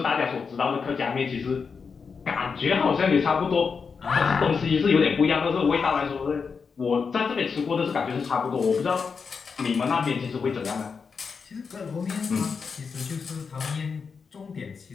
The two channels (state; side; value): quieter; right; 5.5 dB